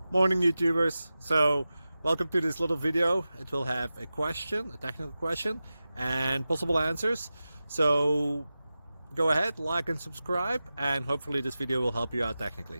Morning YouTubers. So welcome to this little video. It will have a question, a technical question, and possible answers. So go ahead, like and subscribe, and hopefully this video will help you out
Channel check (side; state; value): both; inverted; correlation -0.94